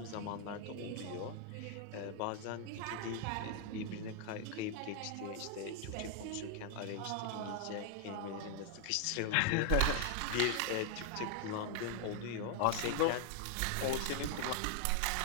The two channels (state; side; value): different; both; correlation 0.00